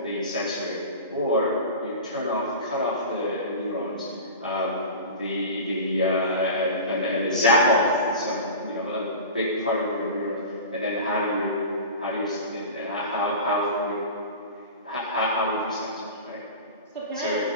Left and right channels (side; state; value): both; inverted; correlation -0.32